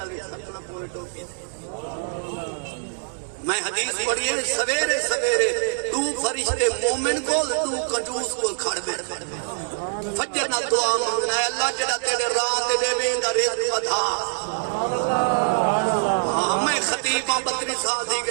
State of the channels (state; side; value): silent; left; digital silence